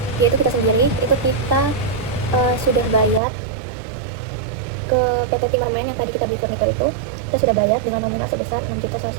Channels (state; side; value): drops out; left; at 3.2 s